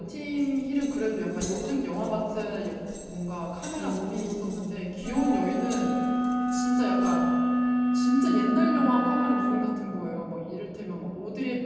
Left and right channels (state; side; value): identical; both; correlation 1.00